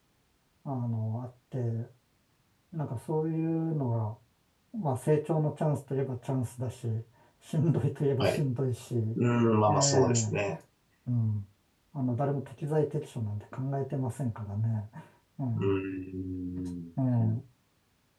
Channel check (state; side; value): identical; both; correlation 1.00